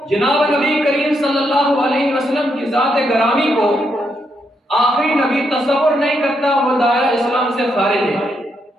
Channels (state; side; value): normal; both; correlation 0.79